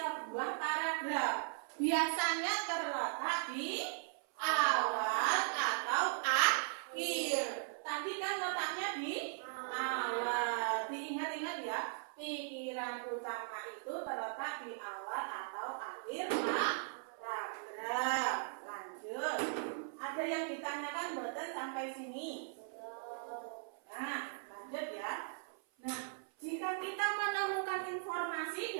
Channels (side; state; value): left; silent; 52 dB below the other